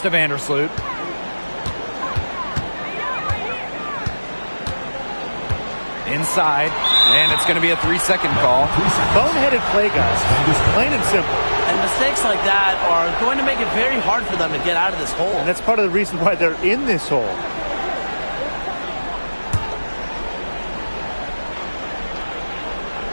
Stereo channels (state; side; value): inverted; both; correlation -1.00